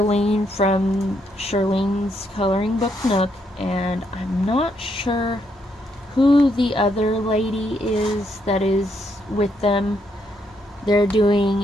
from Charlene's Coloring Book Nook, and I'm not sure who the other lady is that is with them. They're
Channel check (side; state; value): both; normal; correlation 0.76